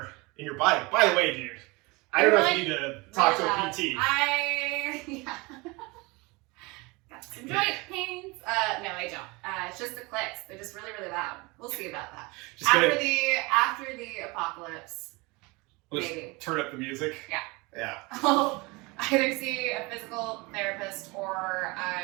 body. By the way, dude, I don't know if you need to talk to a PT. Yeah. Got some joint pains. No, I don't. It's just the clicks. They're just really, really loud. We'll see about that. Just After gonna, the apocalypse, Let's maybe. turn up the music. Yeah. I'll either see a physical therapist or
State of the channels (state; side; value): quieter; left; 25.4 dB